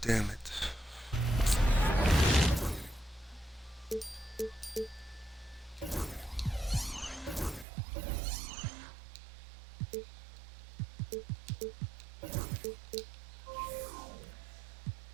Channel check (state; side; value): drops out; left; at 7.7 s